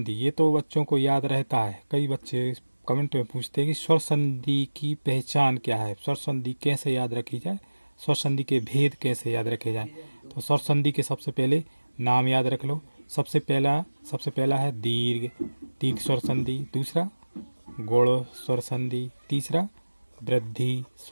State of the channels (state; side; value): inverted; both; correlation -1.00